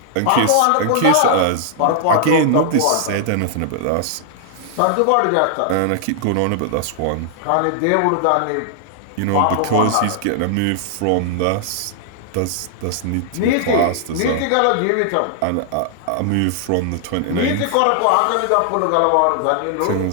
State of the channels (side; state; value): both; different; correlation -0.01